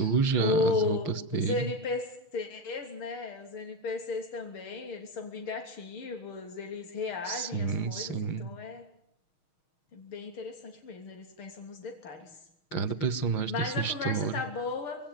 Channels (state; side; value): late; right; 6.4 ms